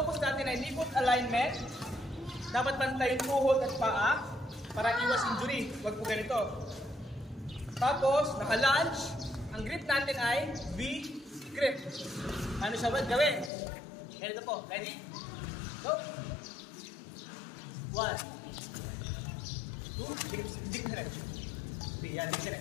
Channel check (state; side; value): drops out; right; at 13.5 s